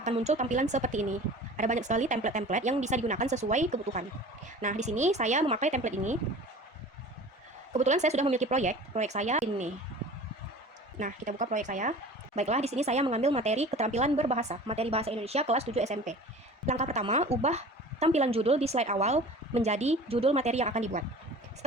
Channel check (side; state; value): both; normal; correlation 0.41